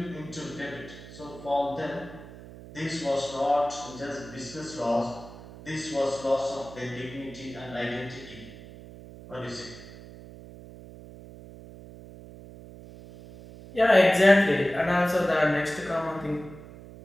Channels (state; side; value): noise; right; hum, 16 dB below the sound